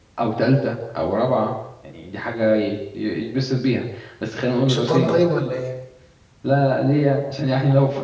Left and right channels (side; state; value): both; identical; correlation 1.00